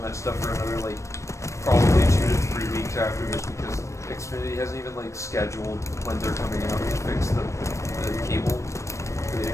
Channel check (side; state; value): right; late; 0.15 ms